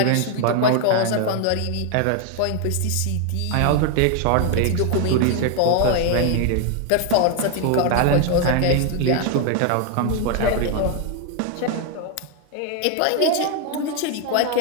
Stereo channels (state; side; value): different; both; correlation 0.01